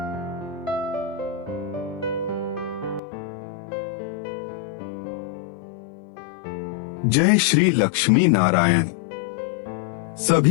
श्री लक्ष्मी नारायण।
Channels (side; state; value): right; drops out; at 3.0 s